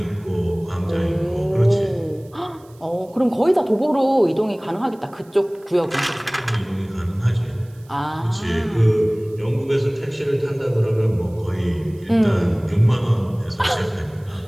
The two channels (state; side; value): noise; right; hiss, 30 dB below the sound